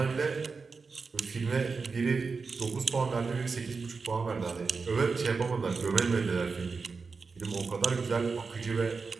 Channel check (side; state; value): left; quieter; 4.7 dB